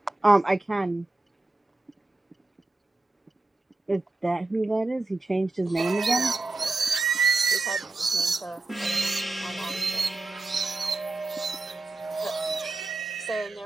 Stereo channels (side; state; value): left; quieter; 3.2 dB